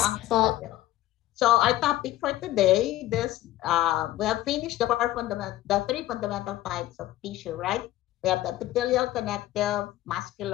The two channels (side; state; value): right; quieter; 15.3 dB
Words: ang po. audio? So our topic for today, we have finished the three fundamental types of tissue, right? We have the epithelial, connective,